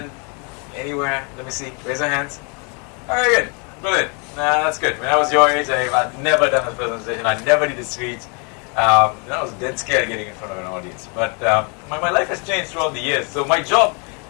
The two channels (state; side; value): quieter; right; 35.3 dB